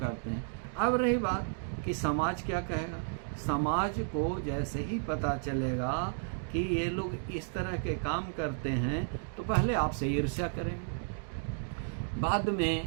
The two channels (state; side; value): silent; left; digital silence